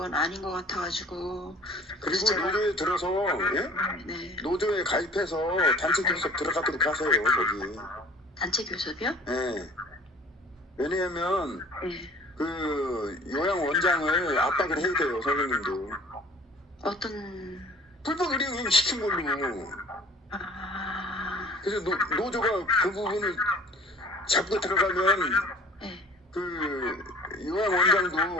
아닌 것 같아가지고. 그리고 노조에 들어서 네. 노조에 가입해서 단체 교섭 들어가도록 하세요. 거기. 단체 교섭이요? 네. 왜냐하면 네. 그 요양 원장을 압박을 해야 돼요 선생님도. 어떤 불법 의료행위 시킨 걸로. 그래서 노조가 그 부분을 잡고 들어가면 그 요양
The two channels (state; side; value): normal; both; correlation 0.49